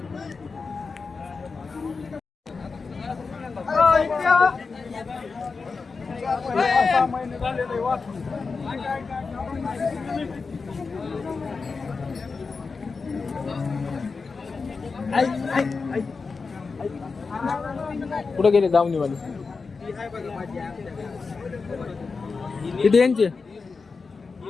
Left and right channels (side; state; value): right; quieter; 4.6 dB